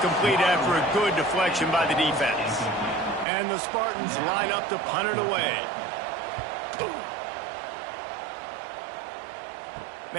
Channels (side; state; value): left; drops out; at 3.2 s